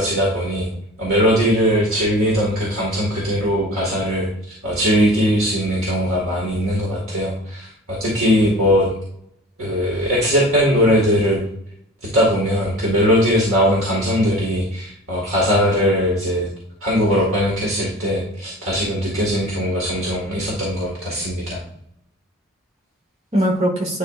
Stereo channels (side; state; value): both; normal; correlation 0.40